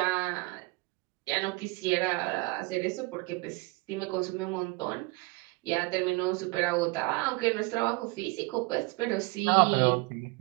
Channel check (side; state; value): left; quieter; 24.7 dB